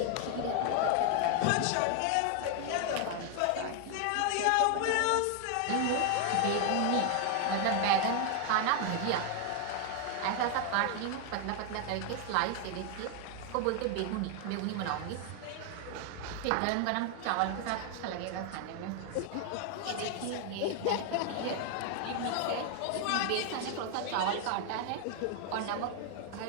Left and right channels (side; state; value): both; different; correlation 0.00